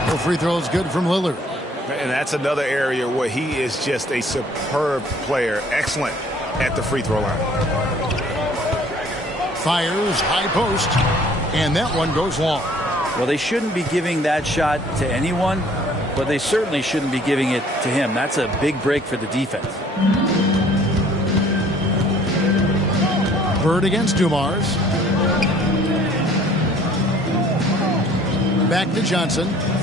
No free throws good from Lillard. And that's another area where he is just a superb player. Excellent at the free throw line. Fires, high post, and that one goes long. Well, they shouldn't be giving that shot to anyone, but they certainly shouldn't be giving it to him. That's a big break for the defense. Bird against Dumars. Back to Johnson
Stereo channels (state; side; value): normal; both; correlation 0.56